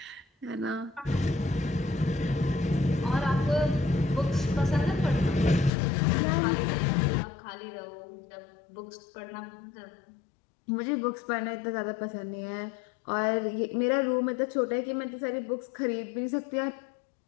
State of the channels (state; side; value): drops out; right; at 5.7 s